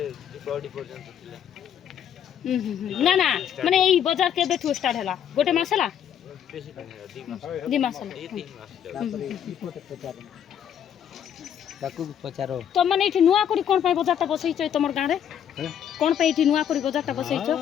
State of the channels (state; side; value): quieter; right; 9.3 dB